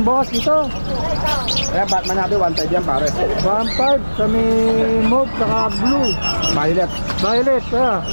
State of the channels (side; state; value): both; inverted; correlation -1.00